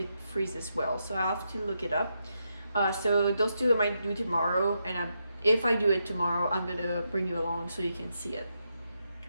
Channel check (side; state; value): both; inverted; correlation -0.83